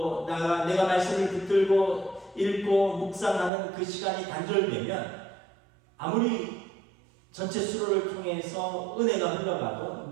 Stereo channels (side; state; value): left; drops out; at 3.5 s